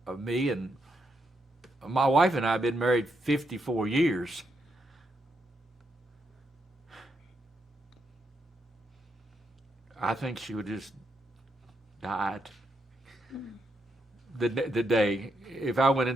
me. And my wife and I have been married 54 years. I think she would just died the day. If I went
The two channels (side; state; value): both; normal; correlation 0.80